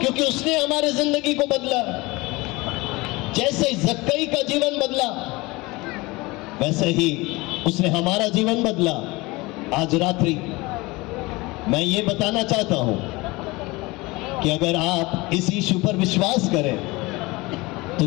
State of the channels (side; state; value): right; quieter; 22.8 dB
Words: उसने हमारे जिंदगी को बदला। जैसे जक्कई का जीवन बदला, वैसे ही उसने हमारा जीवन बदला। आज रात्रि मैं ये बताना चाहता हूं कि अगर आप इस यीशु पर विश्वास करें तो